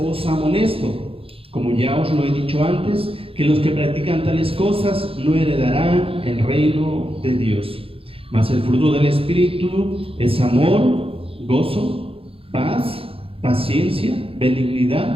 amonesto, como ya os lo he dicho antes, que los que practican tales cosas no heredarán el reino de Dios. Mas el fruto del Espíritu es amor, gozo, paz, paciencia,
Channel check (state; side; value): late; left; 0.27 ms